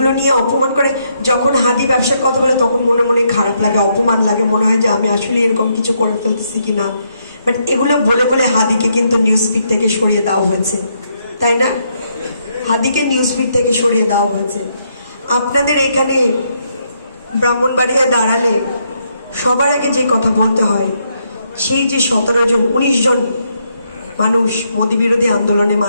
নিয়ে অপমান করে, যখন হাদি ব্যবসার কথা বলে তখন মনে মনে খারাপ লাগে, অপমান লাগে, মনে হয় যে আমি আসলে এরকম কিছু করে ফেলতেছি কিনা। বাট এগুলো বলে বলে হাদিকে কিন্তু নিউজ ফিড থেকে সরিয়ে দেওয়া হয়েছে, তাই না? হাদিকে নিউজ ফিড থেকে সরিয়ে দেওয়া হয়েছে। আপনাদের এখানে ব্রাহ্মণবাড়িয়ায় দাঁড়ালে সবার আগে যে কথা বলতে হয়, সেই যে 17 জন 19 জন মানুষ মোদী বিরোধী আন্দোলনে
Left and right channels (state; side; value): inverted; both; correlation -0.76